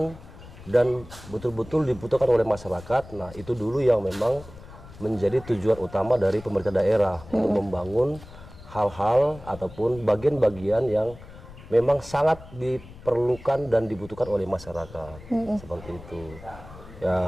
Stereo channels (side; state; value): left; noise; rumble, 18 dB below the sound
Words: dan betul-betul dibutuhkan oleh masyarakat. Nah, itu dulu yang memang menjadi tujuan utama dari pemerintah daerah untuk membangun hal-hal ataupun bagian-bagian yang memang sangat diperlukan dan dibutuhkan oleh masyarakat. Seperti itu.